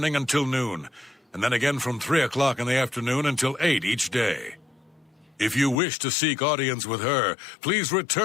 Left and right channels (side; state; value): right; drops out; at 5.8 s